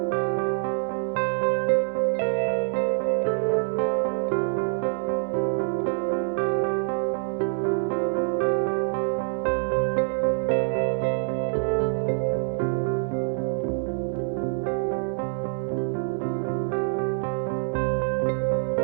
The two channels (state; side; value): silent; left; 61 dB below the other